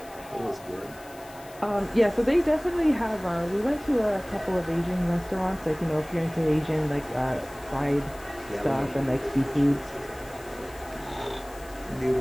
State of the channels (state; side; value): noise; left; hiss, 21 dB below the sound